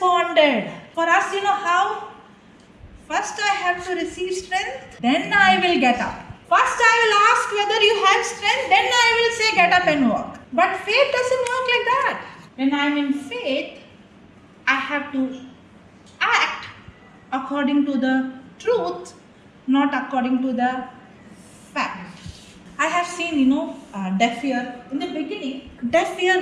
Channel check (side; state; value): both; identical; correlation 1.00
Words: For us, you know how? First I have to receive strength, then I will get up. First I will ask whether you have strength, then I will say get up and walk. But faith doesn't work like that. When I am in faith, I have to act according to the truth, not according to the fact. I have seen, deaf ear. In the beginning, deaf